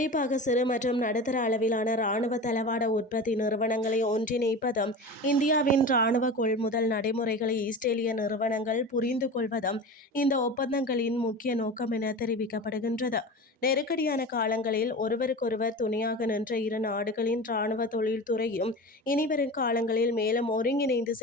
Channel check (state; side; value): normal; both; correlation 0.31